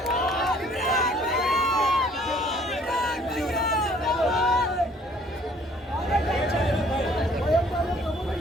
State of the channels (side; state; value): both; normal; correlation 0.58